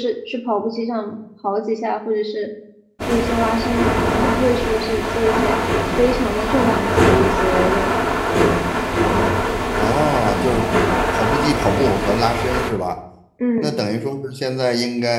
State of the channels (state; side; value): identical; both; correlation 1.00